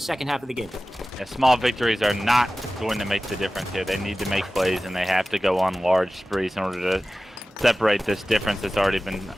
half of the game. Yeah, small victories are not going to make the difference here. They need to make plays, and they have to go on large sprees in order to separate this difference that's already been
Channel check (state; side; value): normal; both; correlation 0.96